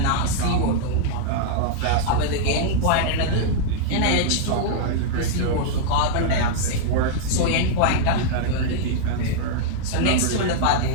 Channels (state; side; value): different; both; correlation -0.01